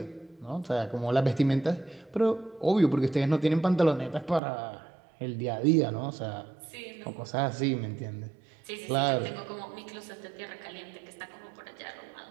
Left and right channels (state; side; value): drops out; left; at 4.4 s